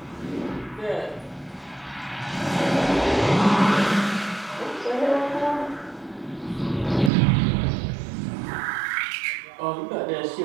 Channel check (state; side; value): drops out; left; at 7.1 s